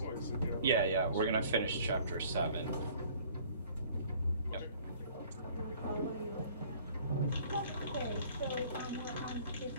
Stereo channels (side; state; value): both; inverted; correlation -0.54